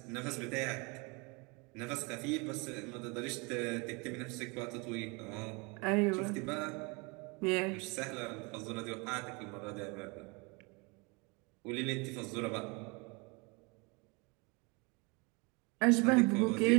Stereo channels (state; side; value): quieter; left; 29.4 dB